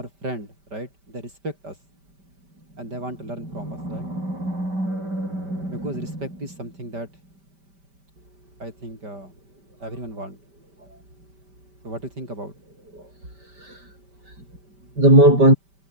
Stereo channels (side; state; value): left; late; 5.1 ms